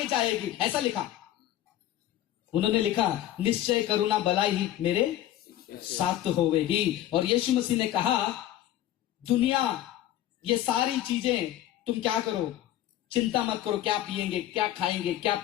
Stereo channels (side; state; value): right; quieter; 12.8 dB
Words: जाएगी, ऐसा लिखा। उन्होंने लिखा, निश्चय करुणा भलाई मेरे साथ होवेगी। और यीशु मसीह ने कहा, दुनिया ये सारी चीजें तुम क्या करो, चिंता मत करो, क्या पिएंगे, क्या खाएंगे, क्या